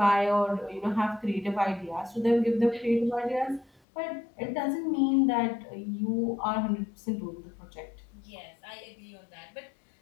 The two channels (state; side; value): drops out; right; at 3.8 s